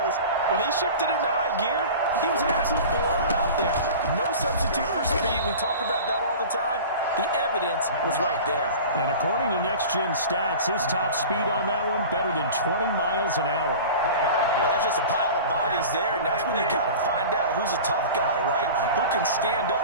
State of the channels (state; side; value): inverted; both; correlation -0.37